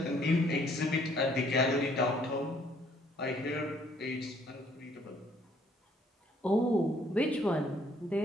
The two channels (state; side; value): normal; both; correlation 0.64